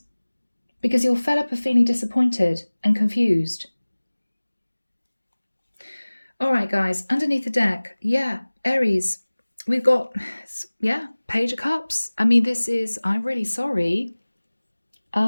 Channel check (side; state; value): both; inverted; correlation -1.00